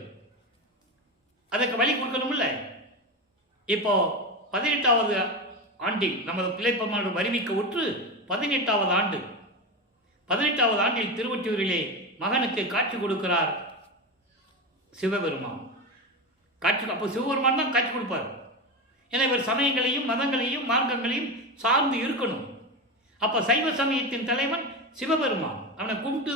அதற்கு வழி கொடுக்கணும்ல. இப்போ 18வது ஆண்டில் நமது பிள்ளைப்பெருமான் வருவிக்க உற்று 18வது ஆண்டு. 18வது ஆண்டில் திருவொற்றியூரிலே மகனுக்கு காட்சி கொடுக்கிறார் சிவபெருமான். அப்போ சிவபெருமான் தான் காட்சி கொடுப்பார். ஏன்னா இவர் சமயங்களையும் மதங்களையும் மார்க்கங்களையும் சார்ந்து இருக்கணும். அப்போ சைவ சமயத்தின் தலைவன் சிவபெருமான், அவனை கும்பிட்டு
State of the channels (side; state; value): both; normal; correlation 0.19